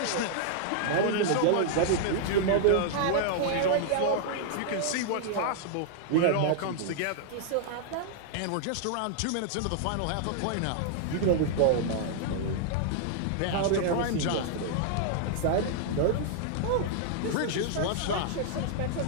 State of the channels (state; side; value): different; both; correlation -0.01